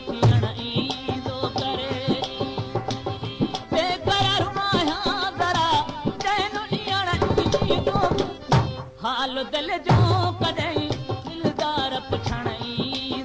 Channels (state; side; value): identical; both; correlation 1.00